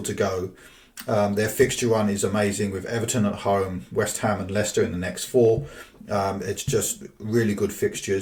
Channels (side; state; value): both; identical; correlation 1.00